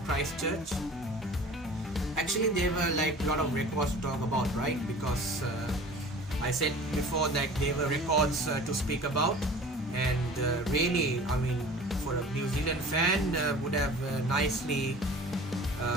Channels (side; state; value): both; normal; correlation 0.42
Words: Christchurch. Actually, there were like a lot of records to talk about, right? Because I said before that there were records to speak about, and really, I mean, for a New Zealand fan, would have nicely